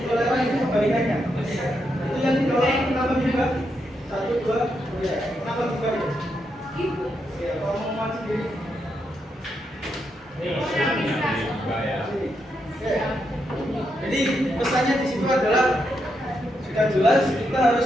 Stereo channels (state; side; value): normal; both; correlation 0.82